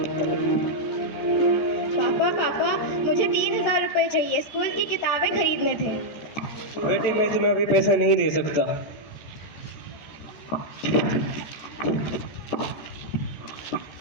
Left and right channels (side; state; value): right; late; 14 ms